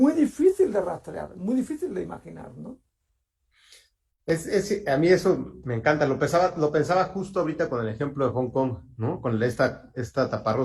difícil de rastrear, muy difícil de imaginar, ¿no? A mí eso me encanta, lo pensaba justo ahorita con el ejemplo de Hong Kong, ¿no? Con esta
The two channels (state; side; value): identical; both; correlation 1.00